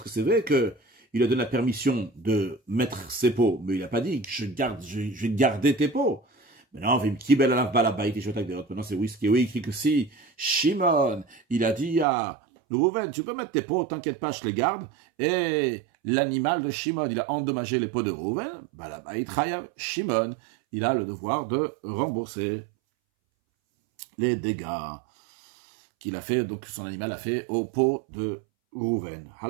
que c'est vrai qu'il a donné la permission de mettre ses pots, mais il n'a pas dit que je vais garder tes pots. Maintenant, maintenant c'est whisky, oui, écrit que si Shimon, il a dit à Rouven, tu peux mettre tes pots, t'inquiète pas, je les garde, et l'animal de Shimon, il a endommagé les pots de Rouven, Shimon, il a le devoir de rembourser les dégâts qu'il a fait, donc son animal a fait au pot de Rouven.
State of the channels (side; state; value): left; drops out; at 12.1 s